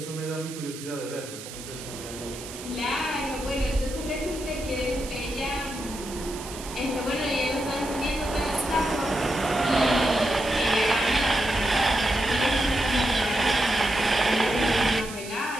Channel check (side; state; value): right; noise; hiss, 12 dB below the sound